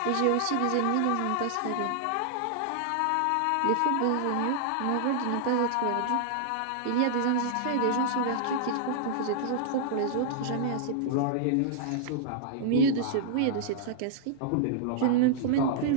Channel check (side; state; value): both; different; correlation -0.01